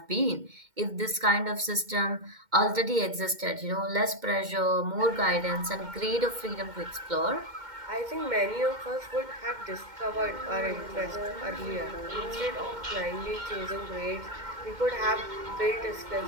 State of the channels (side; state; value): left; late; 2.1 ms